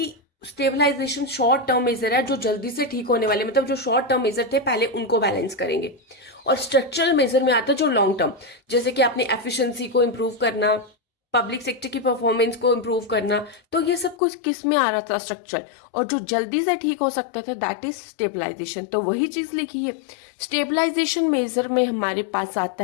स्टेबलाइजेशन शॉर्ट टर्म मेजर है, जो जल्दी से ठीक होने वाले, मतलब जो शॉर्ट टर्म मेजर थे पहले उनको बैलेंस करेंगे। और स्ट्रक्चरल मेजर में आता है जो लॉन्ग टर्म, जैसे कि अपनी एफिशिएंसी को इंप्रूव करना, पब्लिक सेक्टर की परफॉर्मेंस को इंप्रूव करना। तो ये सब कुछ किस में आ रहा था, स्ट्रक्चर। और जो जल्दी से ठीक हो सकता था दैट इज स्टेबलाइजेशन। तो वही चीज लिखी है। स्टेबलाइजेशन मेजर में हमारे पास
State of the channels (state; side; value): drops out; right; at 14.2 s